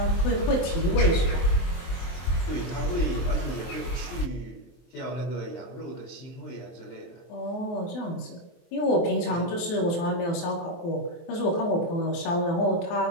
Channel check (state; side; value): late; right; 23 ms